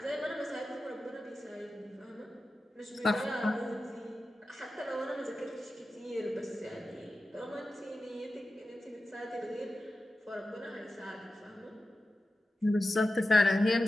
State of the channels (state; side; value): normal; both; correlation 0.93